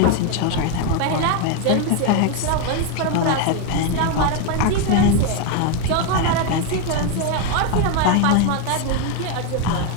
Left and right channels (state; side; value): different; both; correlation 0.02